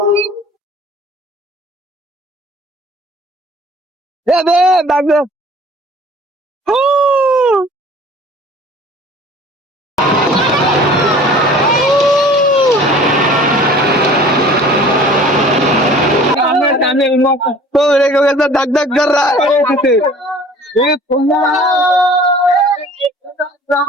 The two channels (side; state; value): both; normal; correlation 0.48